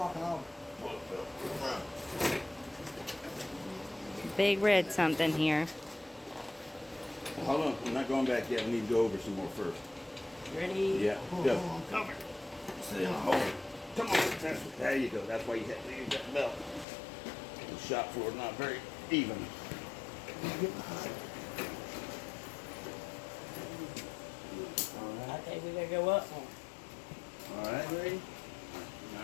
out. big red something here. Hold on, I'm not going back yet. We need to go over some more first. Ready? Yeah, Hold go. on. Over. Sit down, hold it. Come on. There you go. That's why you have to use that belt. The shop floor is not very even. Get behind. All I right. think we gotta go up more. All right. Ready?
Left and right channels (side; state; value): right; drops out; at 16.9 s